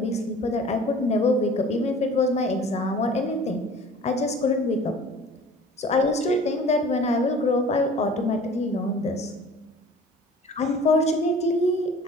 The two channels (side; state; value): both; normal; correlation 0.46